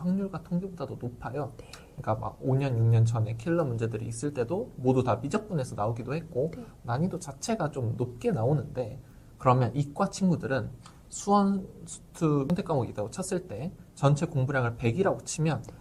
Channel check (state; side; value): identical; both; correlation 1.00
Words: 통계보다도 높아요. 그러니까 막 5년, 6년 전에 킬러 문제들이 있을 때도 모두 다 미적분에서 나오기도 했고 난이도 자체가 좀 높게 나오는데 그러면 이과 친구들은 수원, 수투 선택 과목이 있다고 쳤을 때 전체 공부량을 100이라고 치면